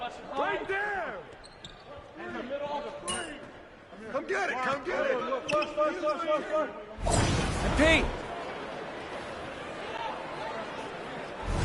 Right there. In the middle of the frame. Come get it. Come get it. Pete.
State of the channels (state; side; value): identical; both; correlation 1.00